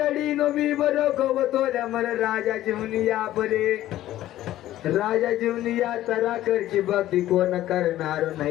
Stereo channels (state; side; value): quieter; right; 14.0 dB